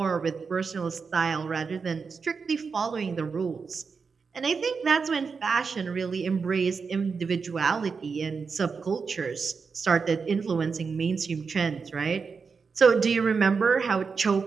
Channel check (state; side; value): quieter; left; 5.3 dB